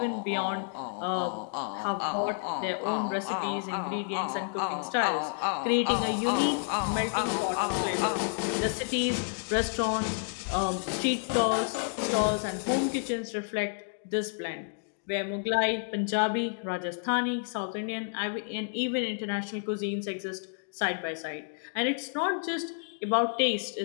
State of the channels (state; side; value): silent; right; digital silence